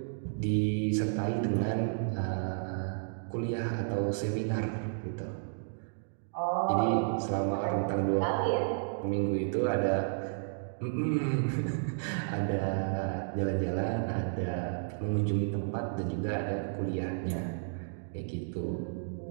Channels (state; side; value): silent; left; digital silence